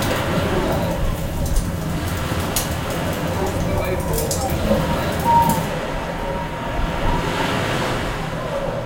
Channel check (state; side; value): identical; both; correlation 1.00